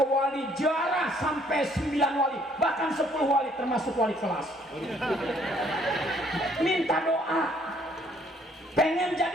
wali, jarah sampai 9 wali, bahkan 10 wali termasuk wali kelas. Minta doa. Pengen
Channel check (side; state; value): both; normal; correlation 0.63